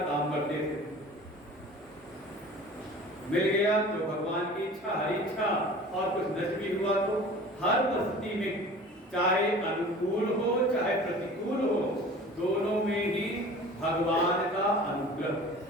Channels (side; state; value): both; normal; correlation 0.42